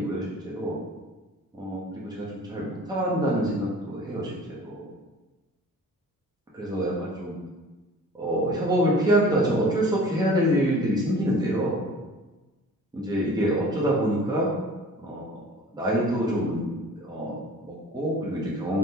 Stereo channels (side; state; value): both; normal; correlation 0.45